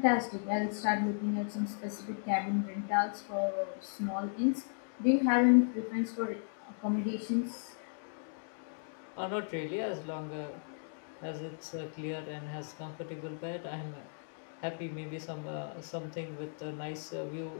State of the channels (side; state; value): right; silent; digital silence